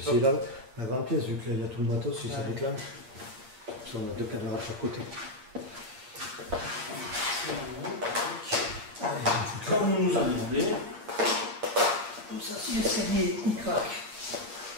Stop. C'est là, la grande pièce, vu qu'il y a tout le matos, si ça Ouais. déclenche. Parce qu'on a 2 caméras de chaque côté. Comme on nous a demandé. Comme ça, si l'escalier il craque.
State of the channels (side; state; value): left; late; 8.5 ms